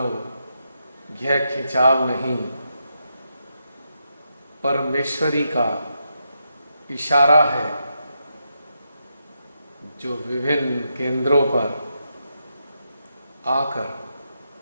यह खिंचाव नहीं, परमेश्वरी का इशारा है जो विभिन्न केंद्रों पर आकर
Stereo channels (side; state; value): both; inverted; correlation -0.83